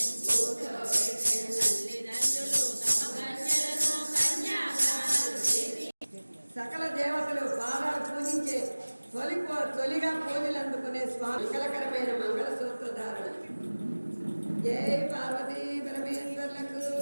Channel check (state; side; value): inverted; both; correlation -1.00